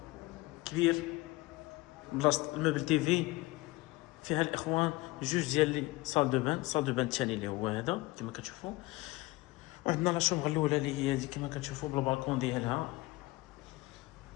كبير بلاصه الموبل تيفي فيها الاخوان جوج ديال لي صال دو بان الثاني اللي هو هذا كما كتشوفوا. وعندنا لا شومبر الاولى اللي هي هذه كما كتشوفوا بالبالكون ديالها.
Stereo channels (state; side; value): quieter; right; 20.7 dB